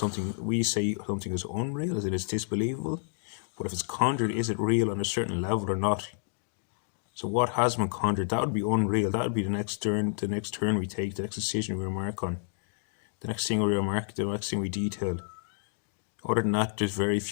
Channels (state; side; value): silent; right; digital silence